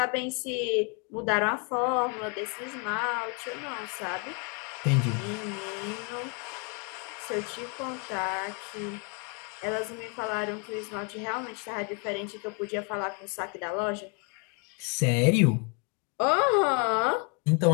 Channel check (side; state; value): right; quieter; 35.7 dB